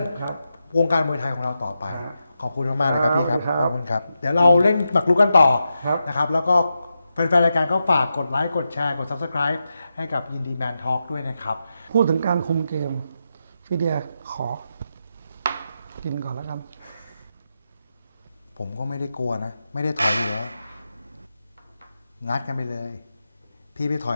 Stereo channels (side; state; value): both; inverted; correlation -0.88